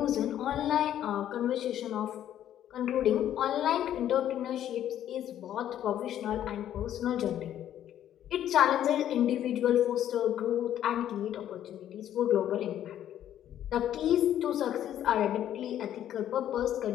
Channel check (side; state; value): right; quieter; 11.2 dB